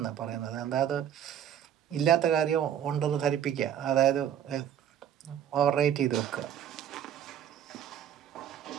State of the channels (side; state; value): left; quieter; 9.8 dB